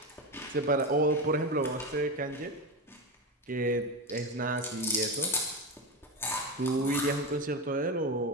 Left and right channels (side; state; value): both; normal; correlation 0.18